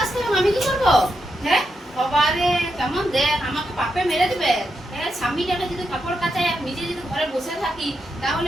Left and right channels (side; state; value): both; normal; correlation 0.84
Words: কাজ করবো? আমি কি করবো? হ্যাঁ বাবা রে, কেমন দেখ, আমাকে পাপে মেরে দিবে। হ্যাঁ, স্বামীটাকে যদি কাপড় কাচায় আর নিজে যদি ঘরে বসে থাকি,